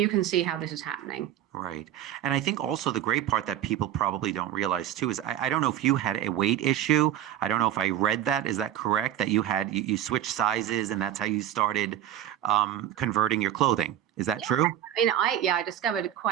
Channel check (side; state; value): left; quieter; 11.4 dB